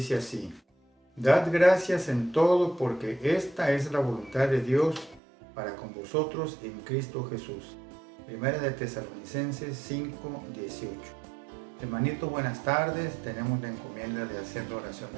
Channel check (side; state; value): left; drops out; at 5.2 s